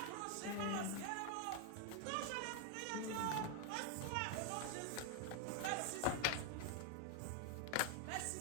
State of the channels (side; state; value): both; different; correlation 0.00